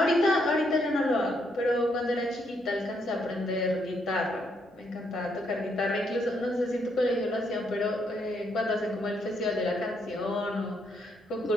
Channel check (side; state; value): both; normal; correlation 0.75